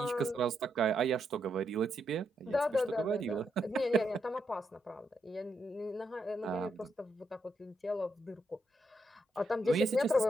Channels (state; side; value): normal; both; correlation 0.80